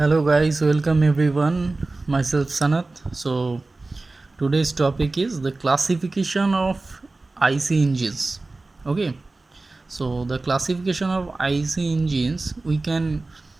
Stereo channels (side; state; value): left; quieter; 3.3 dB